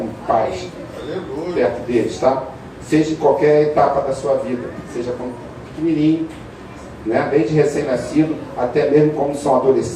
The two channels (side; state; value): both; identical; correlation 1.00